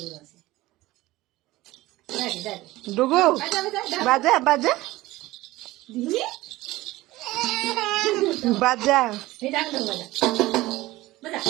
ডুগু বাজা বাজা বাজা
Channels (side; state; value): left; quieter; 18.2 dB